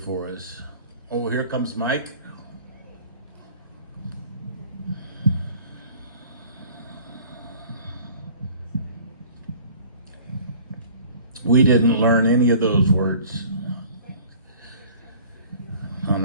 us? Oh, here comes Mike. We didn't learn any of those words on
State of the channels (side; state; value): both; inverted; correlation -0.48